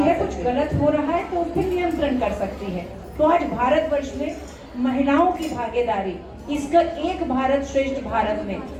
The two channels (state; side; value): identical; both; correlation 1.00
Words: कुछ गलत हो रहा है तो उस पर नियंत्रण कर सकती है। तो आज भारतवर्ष में महिलाओं की भागीदारी, इसका एक भारत श्रेष्ठ भारत में